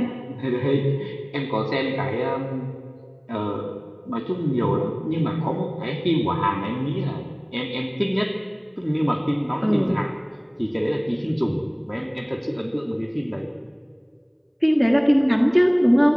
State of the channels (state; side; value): identical; both; correlation 1.00